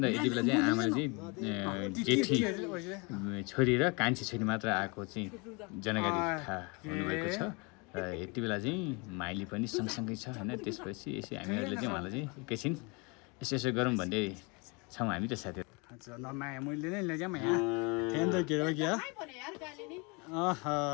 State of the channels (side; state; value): right; quieter; 29.8 dB